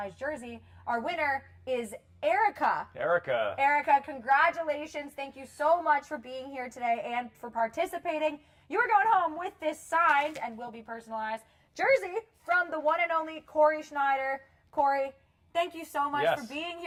jersey. Our winner is Erica. Erica, congratulations. Thank you so much for being here today and for participating. You are going home with this signed and will be personalized jersey from the one and only Corey Schneider. Corey, thank you so much for being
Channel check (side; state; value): both; identical; correlation 1.00